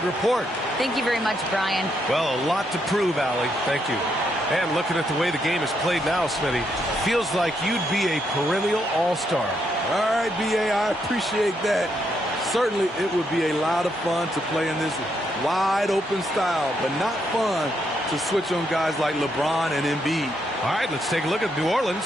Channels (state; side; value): normal; both; correlation 0.77